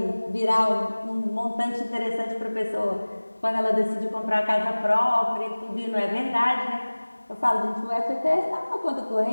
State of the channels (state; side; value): inverted; both; correlation -1.00